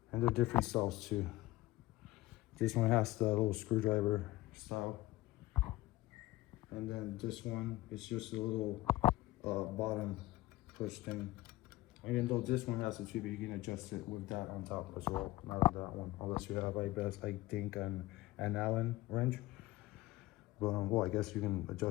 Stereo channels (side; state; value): right; quieter; 17.6 dB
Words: And they're different styles too. This one has the little screwdriver style. And then this one is just a little bottom push thing. Even though this one has a tube, you can adjust it with that on top as well. Not on that one, unless you have, I think, an Allen wrench. But well, I guess you can